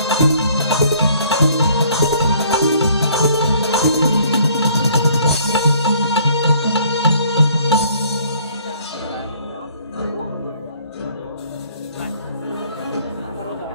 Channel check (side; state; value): both; inverted; correlation -0.59